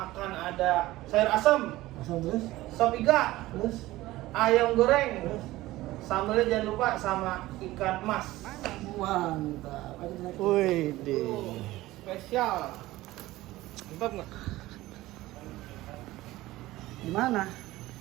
ada sayur asam, Asal terus? sop iga, Terus? ayam goreng, sambelnya jangan lupa sama ikan mas. Mantap. Wih, deh. Spesial. Mantap nggak? Gimana?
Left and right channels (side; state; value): left; quieter; 17.4 dB